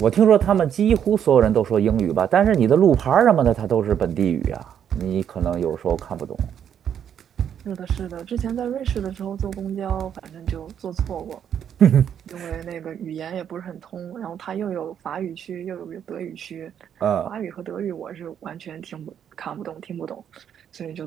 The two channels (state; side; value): quieter; left; 8.9 dB